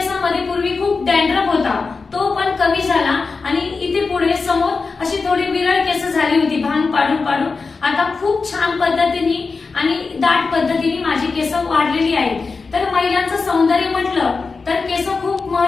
पूर्वी खूप डॅन्ड्रफ होता तो पण कमी झाला आणि इथे पुढे समोर अशी थोडी विरळ केस झाली होती भांग पाडून पाडून. आता खूप छान पद्धतीने आणि दाट पद्धतीने माझी केस वाढलेली आहेत. तर महिलांचं सौंदर्य म्हटलं तर केस खूप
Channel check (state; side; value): quieter; right; 4.4 dB